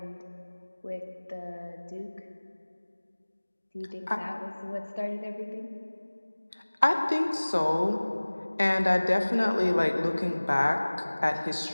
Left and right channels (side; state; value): both; inverted; correlation -1.00